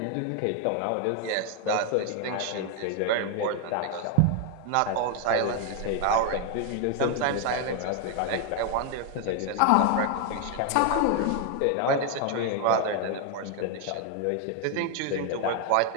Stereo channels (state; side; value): different; both; correlation 0.00